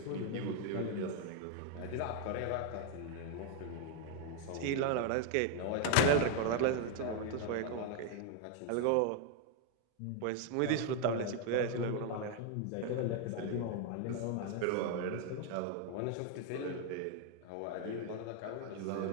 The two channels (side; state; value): both; different; correlation 0.01